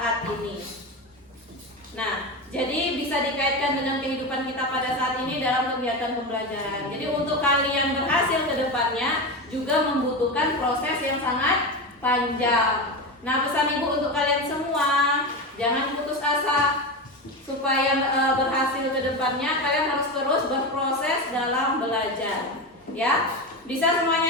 ini. Nah, jadi bisa dikaitkan dengan kehidupan kita pada saat ini dalam kegiatan pembelajaran. Jadi untuk kalian berhasil ke depannya juga membutuhkan proses yang sangat panjang. Nah, pesan Ibu untuk kalian semua, jangan putus asa. Supaya berhasil ke depannya, kalian harus terus berproses dalam belajar. Ya? Bisa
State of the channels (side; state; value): both; normal; correlation 0.20